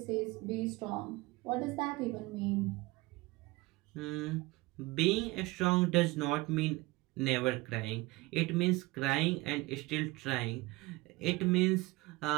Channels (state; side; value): quieter; left; 21.8 dB